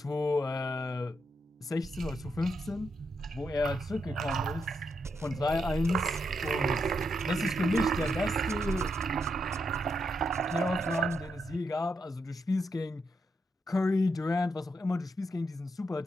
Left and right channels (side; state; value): both; normal; correlation 0.82